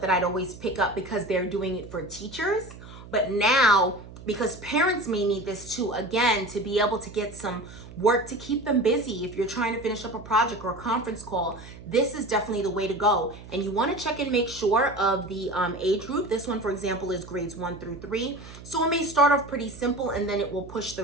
that I'd always pick up because they're doing it for teachers. But now, because parents may need this too, again, to be able to get some work to keep them busy. If you're trying to finish up a project or a conference call, this is definitely the way to go. And you want to check and make sure of the age group. This one, for example, is grades 1 through 3. So it may start off pretty simple, and then it will push the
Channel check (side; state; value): right; noise; hum, 16 dB below the sound